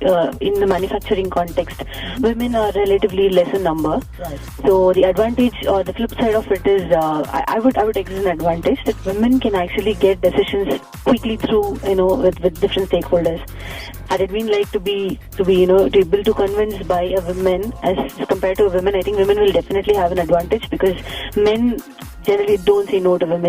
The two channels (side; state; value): both; identical; correlation 1.00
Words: in the manufacturing context, women are relatively less in number. Right. So the advantage or the flip side of it is, I would exert an advantage that women can actually get decisions quickly through, with different stakeholders. Had it been like to be able to convince by a woman as compared to a woman, I think women will definitely have an advantage because men generally don't say no to